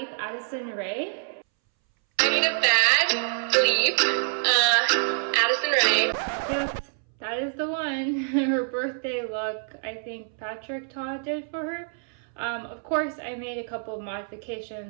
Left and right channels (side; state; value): left; silent; 61 dB below the other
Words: Addison Rae. I need a bad bleep, Addison Rae. Yes, that is the one. Her birthday look, I think Patrick Todd did for her. Of course, I made a couple of